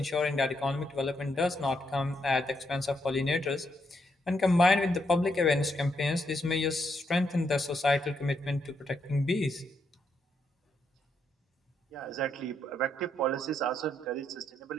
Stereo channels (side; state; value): both; normal; correlation 0.78